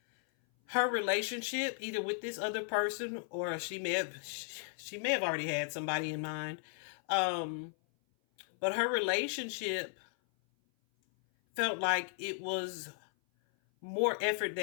her relationship, either with this other person, or she may have already had somebody in mind. But her relationship felt like it was more effort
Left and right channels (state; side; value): silent; right; 54 dB below the other